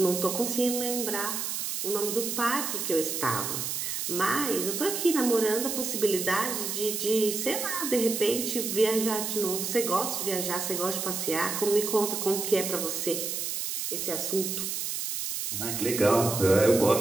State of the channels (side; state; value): right; noise; hiss, 3 dB below the sound